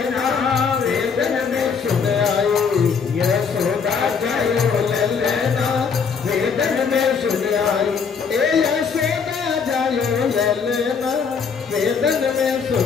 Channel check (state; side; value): quieter; right; 5.9 dB